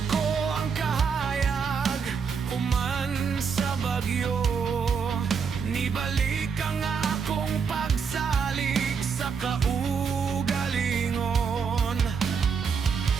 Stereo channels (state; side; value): quieter; left; 6.0 dB